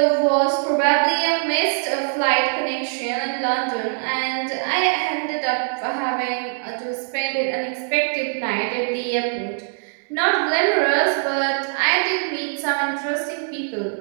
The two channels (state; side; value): silent; left; 61 dB below the other